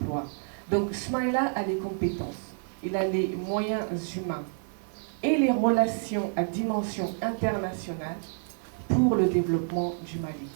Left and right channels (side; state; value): left; silent; 59 dB below the other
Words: Donc Smaïla a les compétences, il a les moyens humains et les relations à dimension internationale pour le développement du Mali.